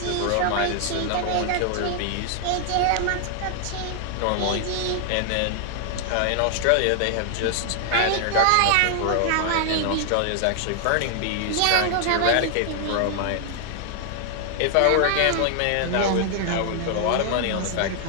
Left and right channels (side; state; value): both; different; correlation 0.00